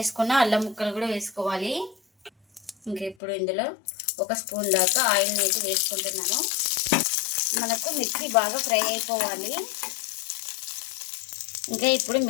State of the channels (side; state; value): right; drops out; at 3.2 s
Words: అల్లం ముక్కలు కూడా వేసుకోవాలి. ఇంకా ఇప్పుడు ఇందులో 1 స్పూన్ దాకా ఆయిల్ని అయితే వేసుకుంటున్నాను. మనకు మిర్చి బాగా ఫ్రై అయిపోవాలి. ఇంకా ఇప్పుడు